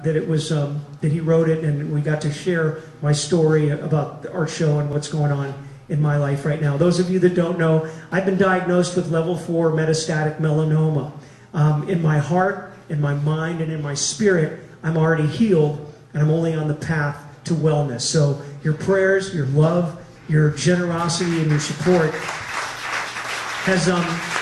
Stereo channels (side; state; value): both; identical; correlation 1.00